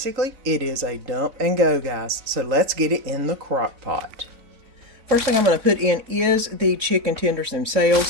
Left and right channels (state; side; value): late; left; 3.9 ms